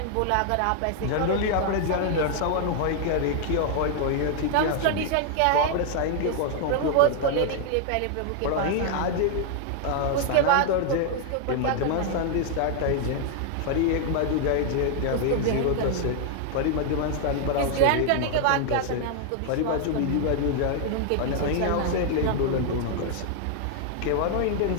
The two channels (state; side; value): different; both; correlation 0.00